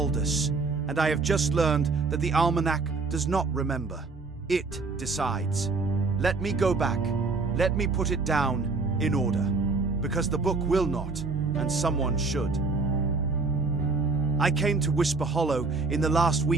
and I have just learned that the Almanac does not remember. It decides. Let me go back. Let me put it down in order, because the book will not, and someone should. I came to Whisper Hollow in the last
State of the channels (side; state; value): left; quieter; 4.0 dB